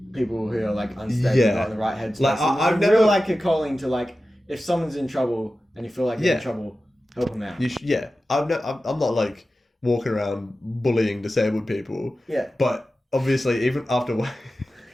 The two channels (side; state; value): both; normal; correlation 0.94